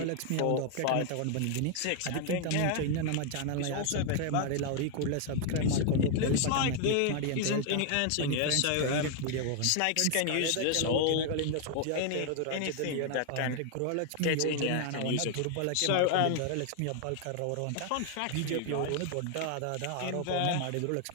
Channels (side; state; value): both; different; correlation 0.00